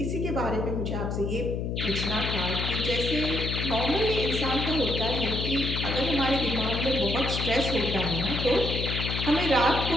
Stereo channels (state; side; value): noise; left; hum, 2 dB below the sound